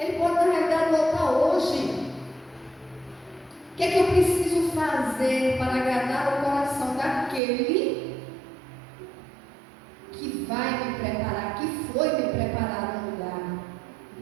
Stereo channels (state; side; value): drops out; left; at 7.4 s